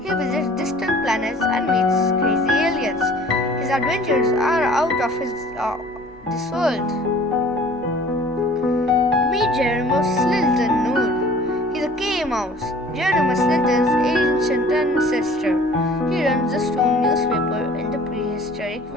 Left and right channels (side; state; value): both; normal; correlation 0.49